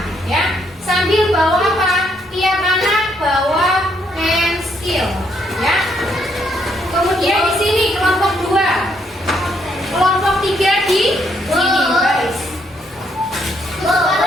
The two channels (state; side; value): normal; both; correlation 0.73